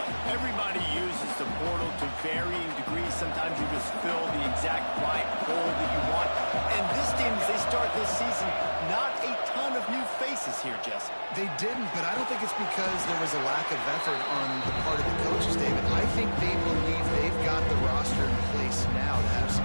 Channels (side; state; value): both; inverted; correlation -1.00